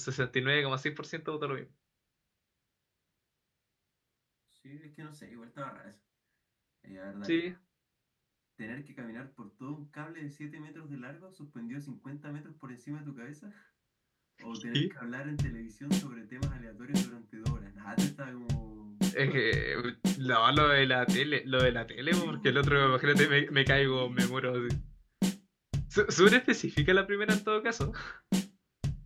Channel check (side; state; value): both; identical; correlation 1.00